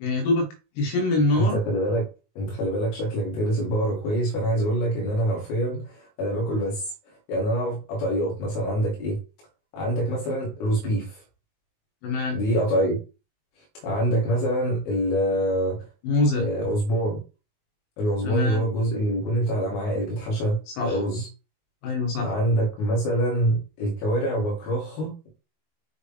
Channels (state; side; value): late; right; 19 ms